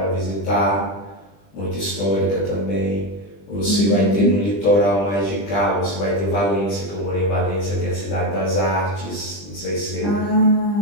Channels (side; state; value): right; late; 20 ms